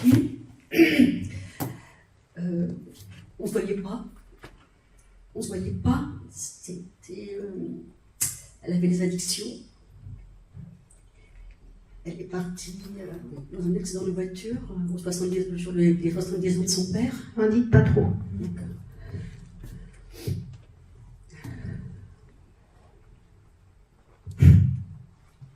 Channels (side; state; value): both; identical; correlation 1.00